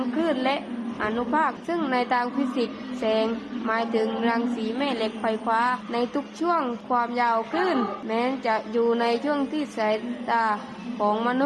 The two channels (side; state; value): both; identical; correlation 1.00